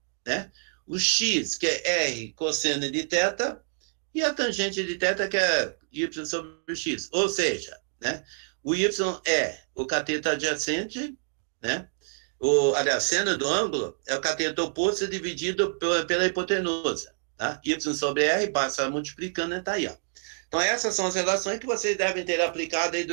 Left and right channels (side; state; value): left; silent; digital silence